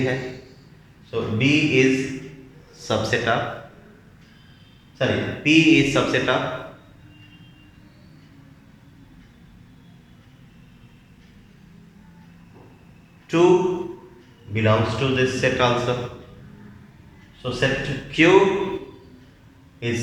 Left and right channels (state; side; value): identical; both; correlation 1.00